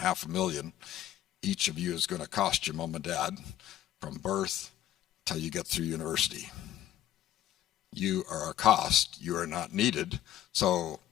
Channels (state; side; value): quieter; right; 12.5 dB